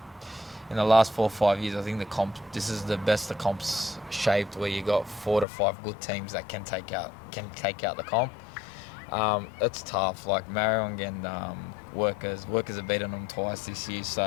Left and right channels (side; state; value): right; drops out; at 5.5 s